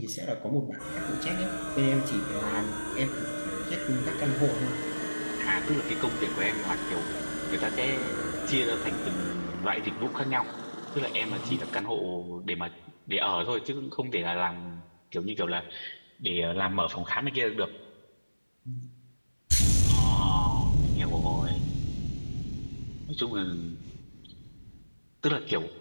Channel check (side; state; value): both; inverted; correlation -1.00